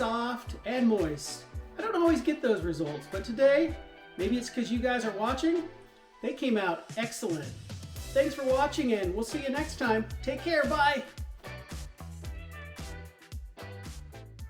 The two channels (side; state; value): both; identical; correlation 1.00